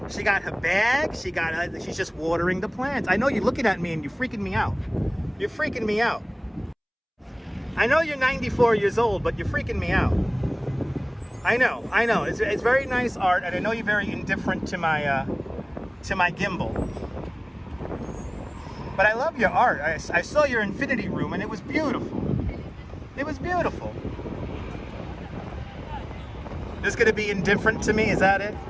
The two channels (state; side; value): identical; both; correlation 1.00